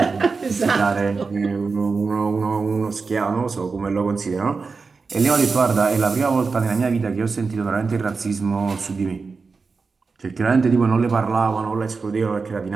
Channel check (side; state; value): left; quieter; 4.6 dB